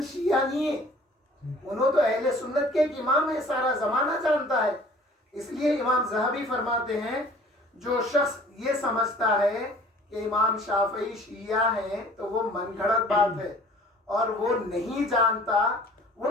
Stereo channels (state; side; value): normal; both; correlation 0.50